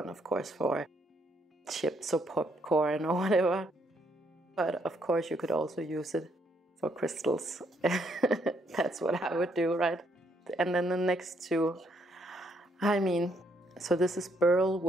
of course, for chips or popcorn or whatever. But of course you could also use it for crystals. That's what I would do, right? And then the next two, so this is burl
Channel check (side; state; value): both; normal; correlation 0.72